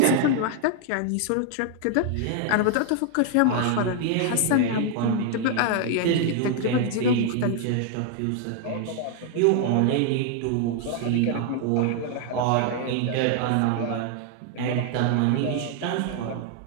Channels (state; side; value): different; both; correlation 0.00